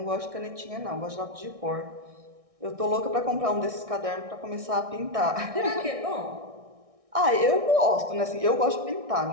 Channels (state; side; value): late; left; 1.6 ms